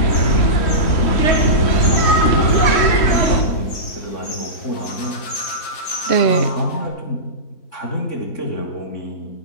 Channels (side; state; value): right; late; 3.1 ms